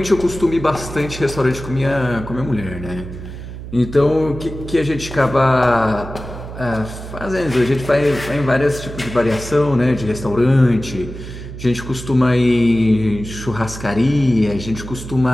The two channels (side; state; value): right; noise; hum, 11 dB below the sound